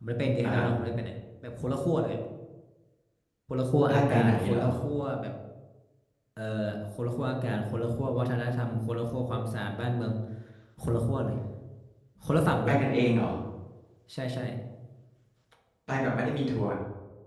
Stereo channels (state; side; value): identical; both; correlation 1.00